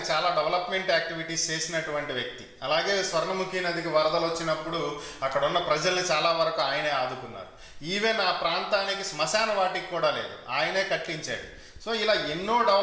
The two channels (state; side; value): identical; both; correlation 1.00